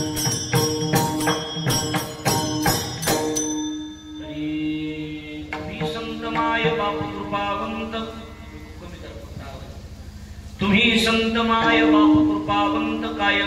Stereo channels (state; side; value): identical; both; correlation 1.00